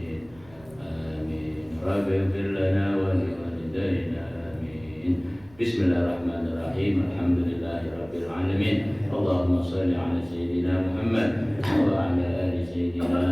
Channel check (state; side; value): noise; right; rumble, 26 dB below the sound